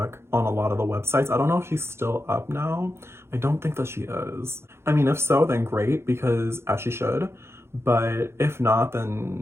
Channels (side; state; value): left; late; 0.12 ms